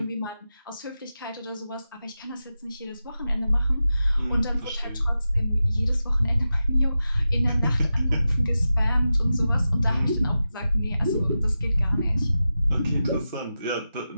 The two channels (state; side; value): inverted; both; correlation -0.92